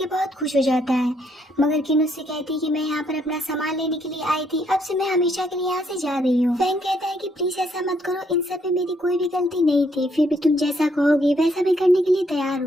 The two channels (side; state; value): both; normal; correlation 0.71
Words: बहुत खुश हो जाता है, मगर किन उससे कहती है कि मैं यहाँ पर अपना सामान लेने के लिए आई थी, अब से मैं हमेशा के लिए यहाँ से जा रही हूँ। फैंग कहता है कि प्लीज ऐसा मत करो, इन सब में मेरी कोई भी गलती नहीं थी, फिर भी तुम जैसा कहोगे वैसा मैं करने के लिए तैयार